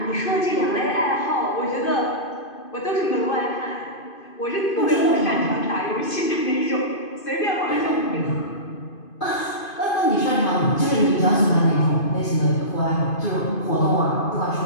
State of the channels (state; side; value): late; right; 2.5 ms